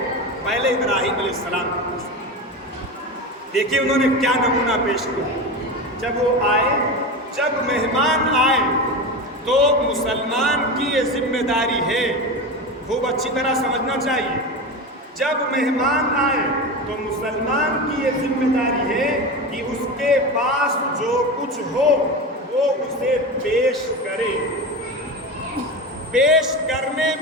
پہلے ابراہیم علیہ السلام کے پاس، دیکھیے انہوں نے کیا نمونہ پیش کیا۔ جب وہ آئے، جب مہمان آئے تو مسلمان کی یہ ذمہ داری ہے، خوب اچھی طرح سمجھنا چاہیے، جب مہمان آئے تو مسلمان کی یہ ذمہ داری ہے کہ اس کے پاس جو کچھ ہو وہ اسے پیش کرے۔ پیش کرنے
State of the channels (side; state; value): both; normal; correlation 0.23